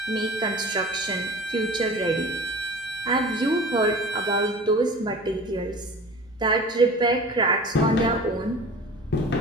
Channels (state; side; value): noise; right; hum, 29 dB below the sound